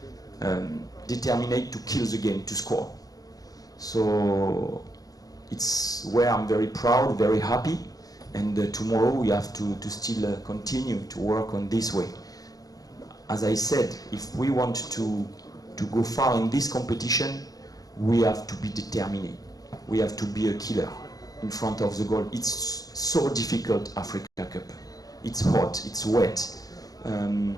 determined to kill the game, to score. So it's where I'm very proud, very happy. And tomorrow we have to still continue to work on this way. As I said, if we want to go far in this competition, we have to be determined. We have to be a killer in front of the goal. It's so difficult, Africa Cup. It's hot, it's wet.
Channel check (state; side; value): late; right; 0.18 ms